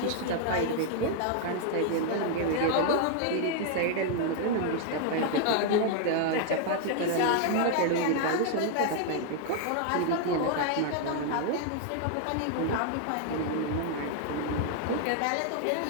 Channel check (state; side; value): different; both; correlation 0.00